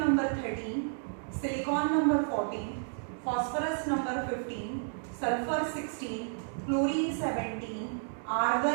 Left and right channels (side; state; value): left; silent; digital silence